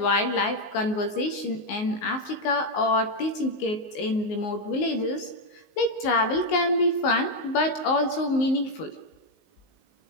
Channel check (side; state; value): right; late; 19 ms